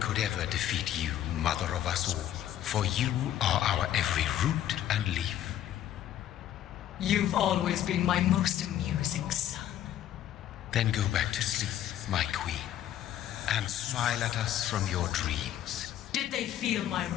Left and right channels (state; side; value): quieter; right; 11.6 dB